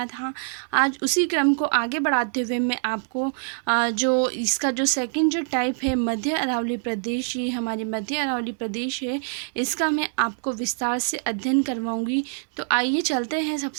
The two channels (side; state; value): left; silent; digital silence